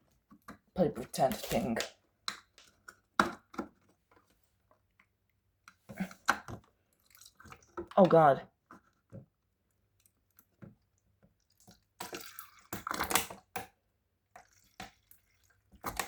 play pretend thing. Oh god.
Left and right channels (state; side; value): identical; both; correlation 1.00